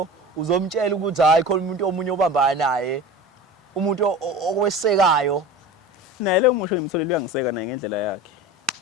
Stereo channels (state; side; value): normal; both; correlation 0.34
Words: uzomtshela ukuthi hayi khona umuntu omunye obambana naye umuntu okwesekayo naye lo musho ngimtholile uyangiseka naye ngendlela yakhe